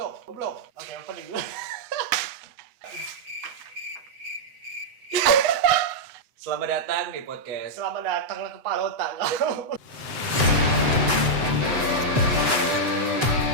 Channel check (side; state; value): left; late; 7.9 ms